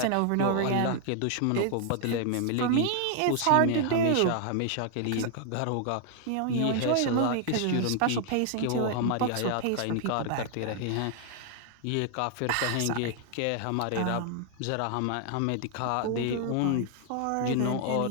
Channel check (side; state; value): both; different; correlation 0.00